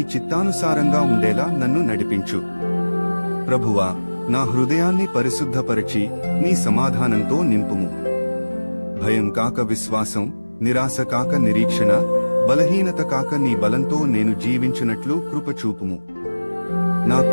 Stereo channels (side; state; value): both; inverted; correlation -1.00